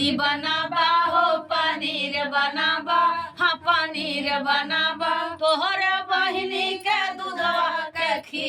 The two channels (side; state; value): both; identical; correlation 1.00